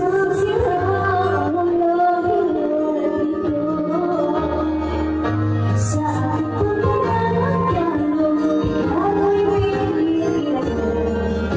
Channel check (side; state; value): both; identical; correlation 1.00